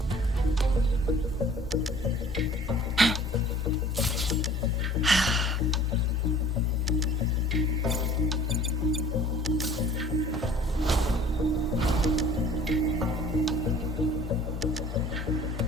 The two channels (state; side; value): normal; both; correlation 0.49